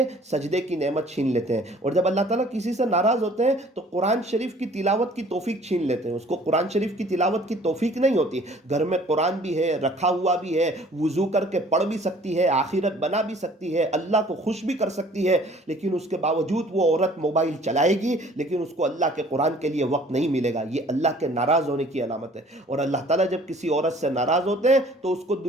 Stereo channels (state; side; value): normal; both; correlation 0.53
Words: سجدے کی نعمت چھین لیتے ہیں۔ اور جب اللہ تعالیٰ کسی سے ناراض ہوتے ہیں تو قرآن شریف کی تلاوت کی توفیق چھین لیتے ہیں، اس کو قرآن شریف کی تلاوت کی توفیق نہیں ہوتی۔ گھر میں قرآن بھی ہے، رکھا ہوا بھی ہے، وضو کر کے پڑھ بھی سکتی ہے، آخرت بنا منا بھی سکتی ہے, اللہ کو خوش بھی کر سکتی ہے, لیکن اس کے باوجود وہ عورت موبائل چلائے گی, لیکن اس کو اللہ کے قرآن کے لیے وقت نہیں ملے گا. یہ اللہ کے ناراض ہونے کی علامت ہے. اور اللہ تعالیٰ جب کسی عورت سے ناراض ہوتے ہیں تو اس کو